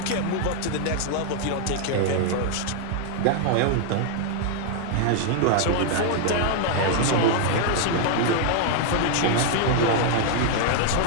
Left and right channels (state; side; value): different; both; correlation 0.00